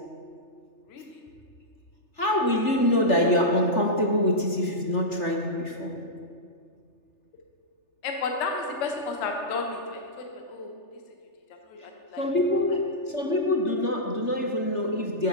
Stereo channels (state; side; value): late; right; 3.4 ms